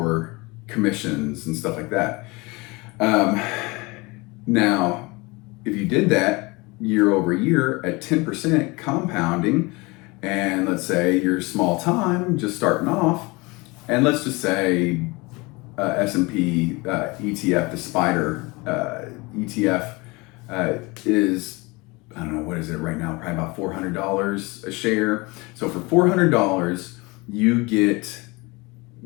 commissions and stuff like that. Now, if you did that year over year at 10% compounding, and let's say you're small time, just starting off, and let's just say S&P ETF, the Spider ETF is, I don't know, what is it right now? Probably about $400 a share. So for $400, you get,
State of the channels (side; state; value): right; quieter; 25.0 dB